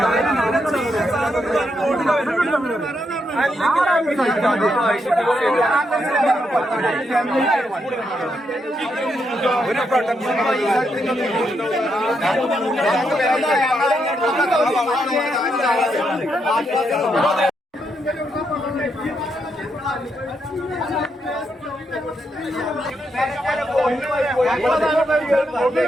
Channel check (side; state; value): both; normal; correlation 0.80